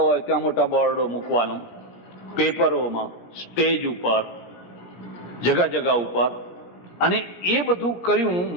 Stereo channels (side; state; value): right; late; 17 ms